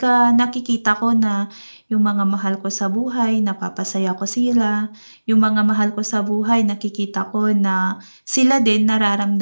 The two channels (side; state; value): both; inverted; correlation -1.00